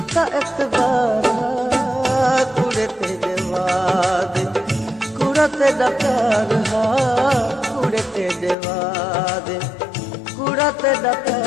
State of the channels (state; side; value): drops out; right; at 8.6 s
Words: एतबार हा कुड़े तेरे वादे कुड़ा तेरा प्यार हा कुड़े तेरे वादे कुड़ा तेरा